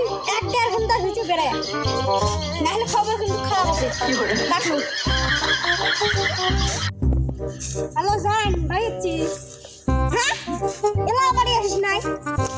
1-1.5 ঘন্টা ভিতরে বেড়ায় নাহলে খবর কিন্তু খারাপ আছে রাখুন হ্যালো জান ভাই হ্যাঁ এলা বাড়ি আসিস নাই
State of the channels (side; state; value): both; identical; correlation 1.00